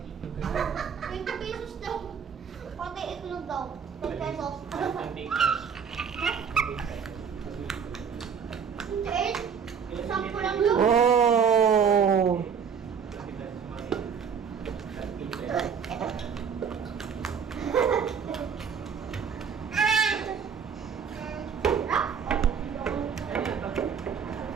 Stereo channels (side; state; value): left; quieter; 6.8 dB